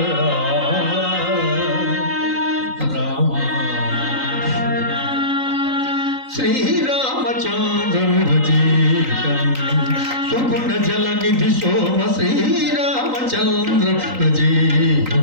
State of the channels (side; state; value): left; late; 3.9 ms